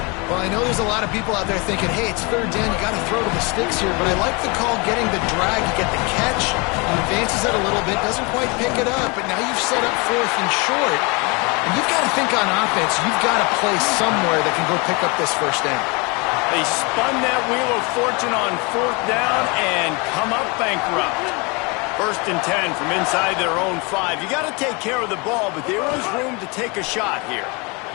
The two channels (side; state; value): right; quieter; 29.4 dB